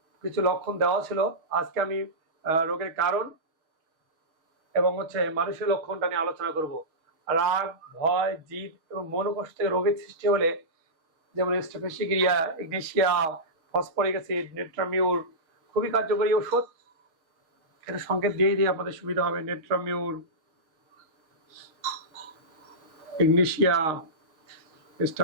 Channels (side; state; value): left; late; 6.4 ms